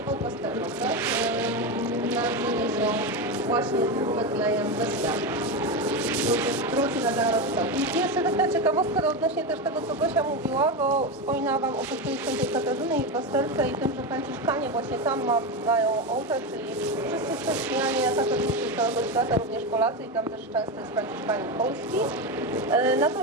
pasterzom, tak? Narodzeni są właśnie z Betlejem Mesjasza. Wróci na zarodca. I jeszcze taka ciekawostka odnośnie też tego, co Gosia mówiła, bo wspominała Wam o kościele Świętej Katarzyny i pasterce i tym, że Franciszkanie właśnie tam mają ołtarz, czyli wszyscy chrześcijanie katolicy z całego świata, również Polacy i tam też często jest Franciszkanin polski.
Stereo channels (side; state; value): both; normal; correlation 0.15